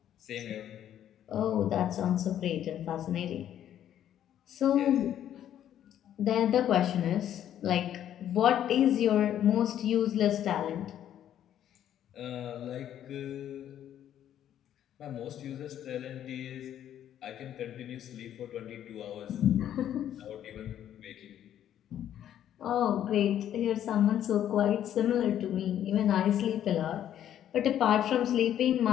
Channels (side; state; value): right; quieter; 10.8 dB